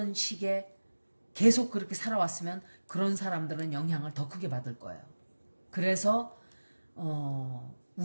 식에 계속 그렇게 살아왔으면 그런 사람들은 영향을 더 크게 받을 거예요. 그래서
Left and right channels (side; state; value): both; inverted; correlation -1.00